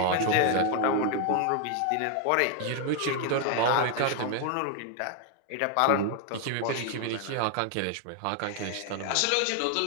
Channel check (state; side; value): different; both; correlation 0.00